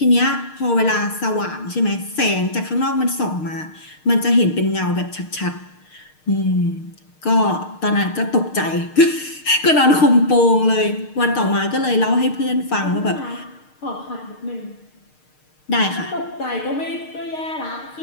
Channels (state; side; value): late; right; 6.5 ms